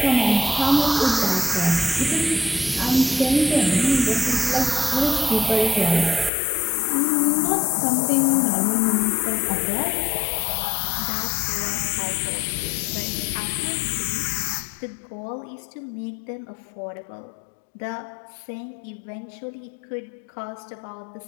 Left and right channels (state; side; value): drops out; right; at 6.3 s